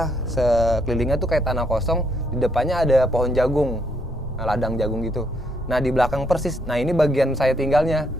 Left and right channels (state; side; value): normal; both; correlation 0.72